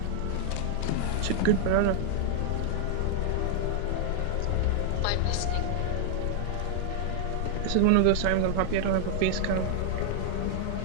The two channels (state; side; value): different; both; correlation 0.00